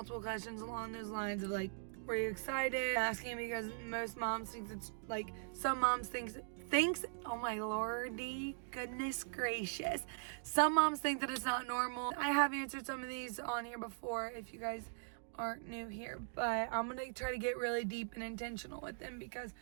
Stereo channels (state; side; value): silent; left; digital silence